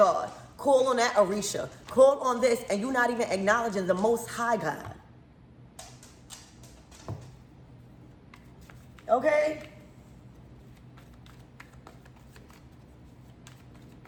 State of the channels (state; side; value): identical; both; correlation 1.00